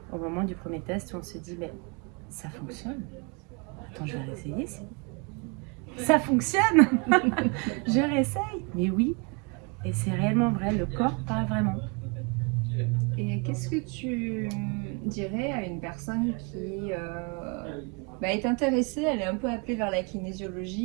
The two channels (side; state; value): left; quieter; 32.1 dB